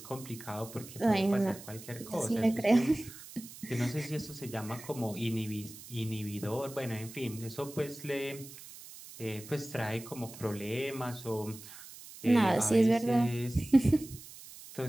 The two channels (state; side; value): noise; right; hiss, 16 dB below the sound